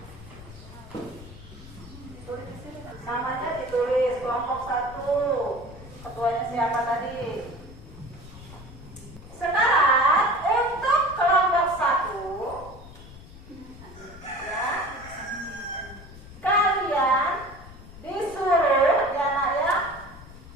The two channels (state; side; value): noise; left; rumble, 17 dB below the sound